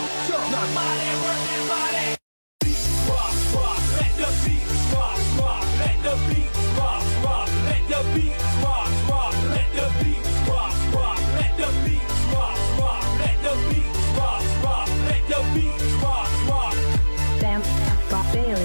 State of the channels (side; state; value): both; inverted; correlation -1.00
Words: now. Body, work that body. Rock, rock, let the beat rock, rock, let the beat rock, rock, let the beat rock, rock, let the beat rock, rock, let the beat rock, rock, let the beat rock, rock, let the beat rock, rock. Bam, ba